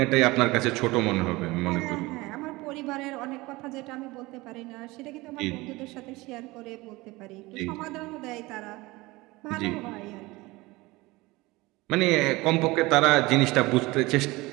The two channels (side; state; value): left; quieter; 21.5 dB